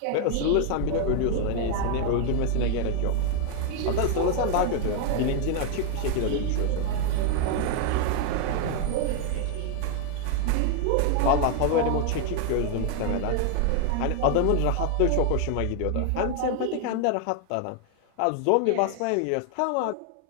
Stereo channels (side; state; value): both; different; correlation 0.00